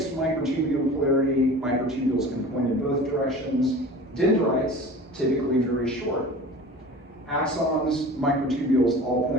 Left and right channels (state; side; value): normal; both; correlation 0.39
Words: microtubule polarity. Microtubules can point in both directions. Dendrites, typically very short. Axons, microtubules all